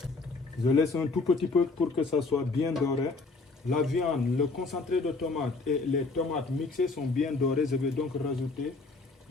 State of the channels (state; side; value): quieter; right; 3.8 dB